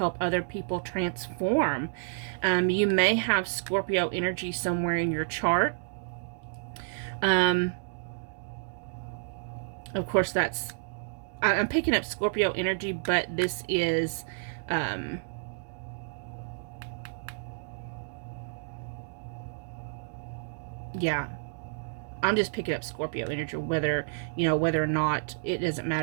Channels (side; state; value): left; silent; digital silence